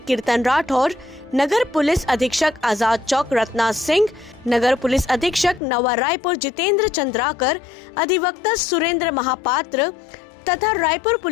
कीर्तन राठौर, नगर पुलिस अधीक्षक आजाद चौक रत्ना सिंह, नगर पुलिस अधीक्षक नवा रायपुर जितेंद्र चंद्राकर, अधिवक्ता सुरेंद्र महापात्र तथा रायपुर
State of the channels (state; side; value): drops out; right; at 5.6 s